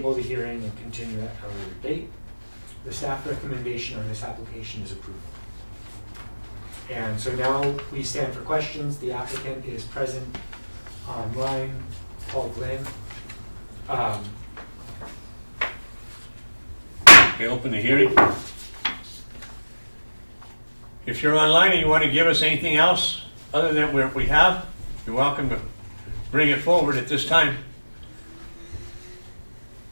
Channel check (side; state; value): both; inverted; correlation -1.00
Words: the hearing and continue at a later date. The staff recommendation on this application is approval. And so now we stand for questions. The applicant is present online, Paul Glenn. Okay, open the hearing. If you're online and you want to give us anything else other than what we have, you're welcome to bring it forward at this time.